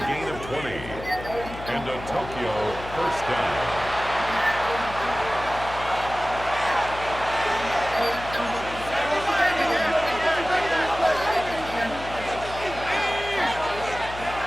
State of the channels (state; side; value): noise; left; hum, 12 dB below the sound